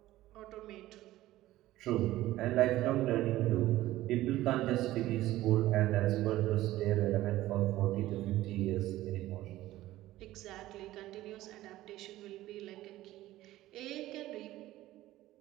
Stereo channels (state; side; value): quieter; left; 15.7 dB